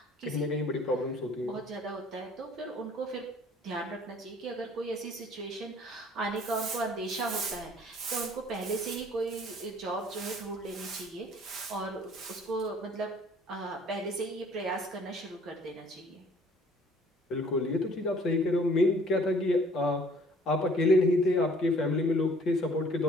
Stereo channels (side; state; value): both; normal; correlation 0.55